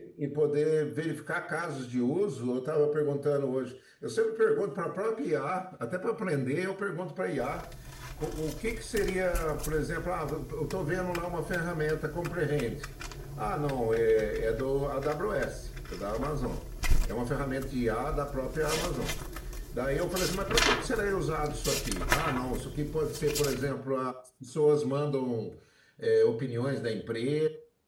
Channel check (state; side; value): identical; both; correlation 1.00